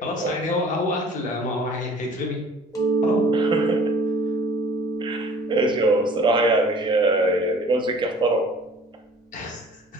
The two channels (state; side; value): normal; both; correlation 0.49